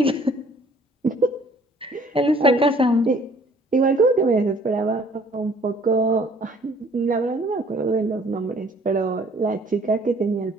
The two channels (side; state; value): both; normal; correlation 0.57